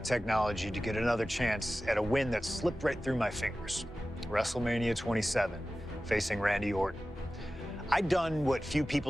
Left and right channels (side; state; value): both; normal; correlation 0.95